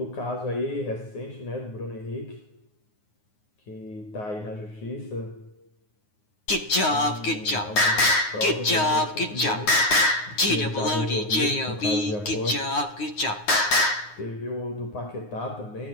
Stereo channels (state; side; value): late; right; 9.6 ms